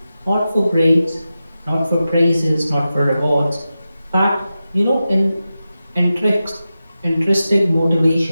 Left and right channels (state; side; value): inverted; both; correlation -0.92